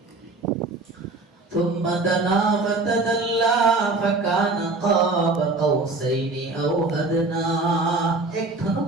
ثم دنا فتدلى فكان قاب قوسين أو أدنى। এক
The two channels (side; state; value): left; quieter; 3.4 dB